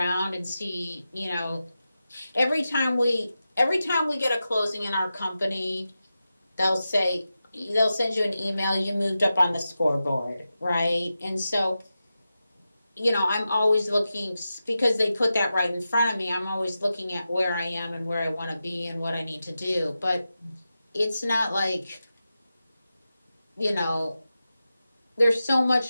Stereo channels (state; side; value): inverted; both; correlation -0.92